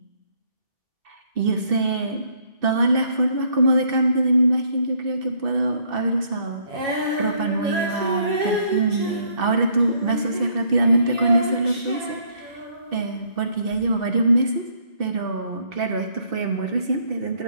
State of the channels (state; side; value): late; left; 2.7 ms